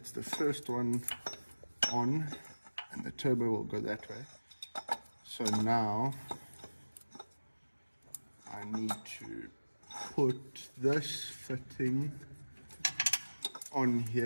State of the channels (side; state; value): both; inverted; correlation -1.00